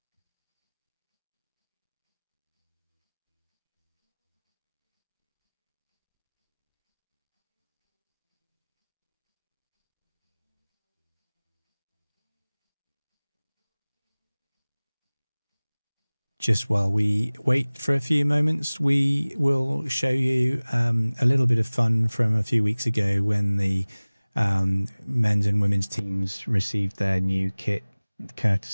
Just while we wait for a few moments, we will show you a little bit of fun from a few weeks ago when the men's and women's teams received their new kit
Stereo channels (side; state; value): both; inverted; correlation -1.00